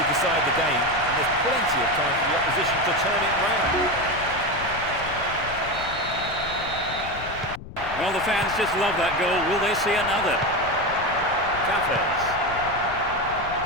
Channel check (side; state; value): left; noise; rumble, 13 dB below the sound